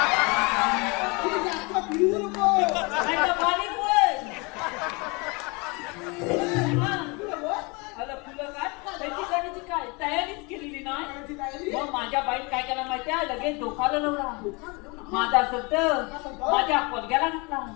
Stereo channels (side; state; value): right; quieter; 28.6 dB